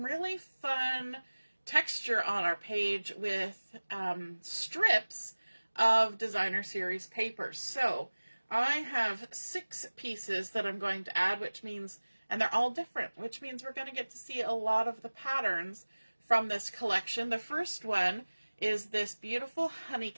really fun texture on our page with strips of Designer Series paper. So I have 6 pieces that I'm going to add, which means, and they're all different, which means we're going to get to see a lot of the patterns from this collection. The first one is this beautiful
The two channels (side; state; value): both; inverted; correlation -1.00